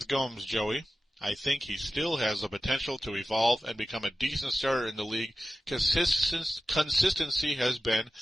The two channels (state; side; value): normal; both; correlation 0.94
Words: Gomes, Joey. I think he still has the potential to evolve and become a decent starter in the league. Consistency has been